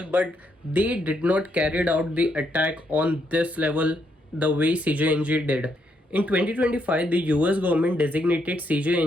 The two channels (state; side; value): normal; both; correlation 0.76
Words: but they did not carry out the attack on this level the way CJNG did. In 2025, the US government designated